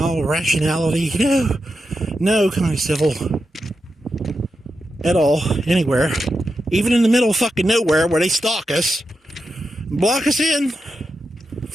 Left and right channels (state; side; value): normal; both; correlation 0.88